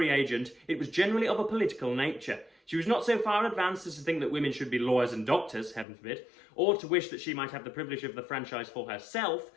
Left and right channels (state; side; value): drops out; right; at 5.9 s